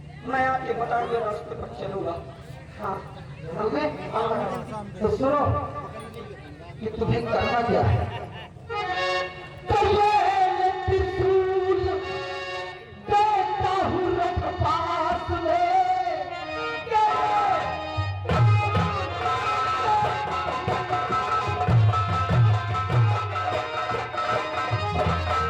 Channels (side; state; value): both; identical; correlation 1.00